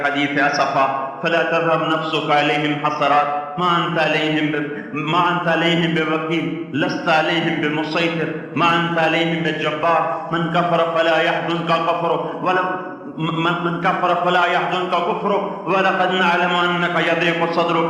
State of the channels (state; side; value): identical; both; correlation 1.00